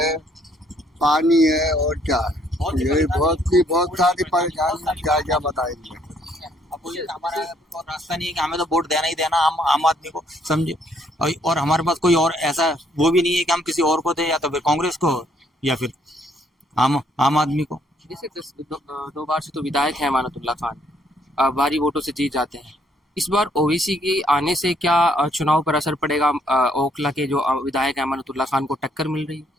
पानी है और क्या है। यही बहुत सारी परेशानी, क्या क्या बताएंगे। अब बोलिए हमारा और रास्ता नहीं है कि हमें तो वोट देना ही देना आम आदमी को, समझे। और हमारे पास कोई और ऐसा वो भी नहीं है कि हम किसी और को दे, या तो फिर कांग्रेस को या फिर आम आदमी को। जैसे 2 बार से तो विधायक है अमानतुल्लाह खान, भारी वोटों से जीत जाते हैं। इस बार ओवैसी के आने से क्या चुनाव पर असर पड़ेगा? ओखला के जो विधायक अमानतुल्लाह खान को टक्कर मिल रही है।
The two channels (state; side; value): normal; both; correlation 0.67